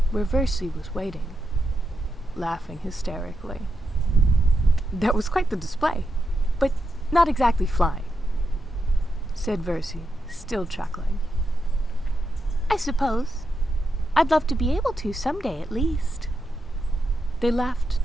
where Versi was waiting, laughing hysterically. That was quite the display, but not exactly flying, said Versi, still chuckling. I suppose. I'd love to be able to someday at least. They laughed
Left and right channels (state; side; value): normal; both; correlation 0.85